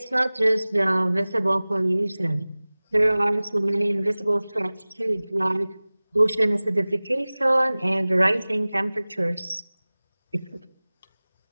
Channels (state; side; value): inverted; both; correlation -0.99